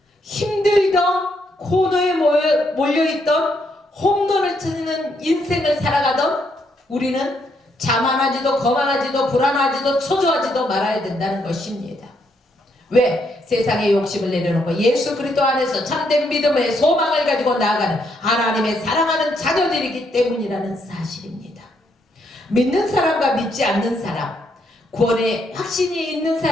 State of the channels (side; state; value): both; normal; correlation 0.75